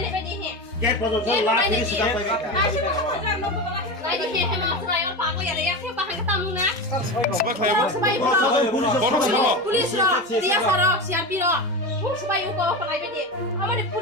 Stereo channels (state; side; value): normal; both; correlation 0.22